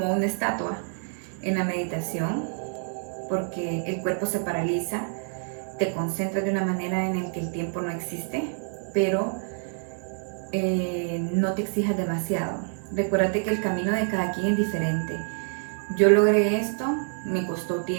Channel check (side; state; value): left; silent; 60 dB below the other